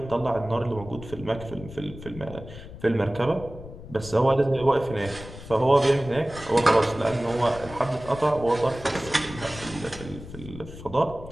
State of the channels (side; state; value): left; noise; rumble, 14 dB below the sound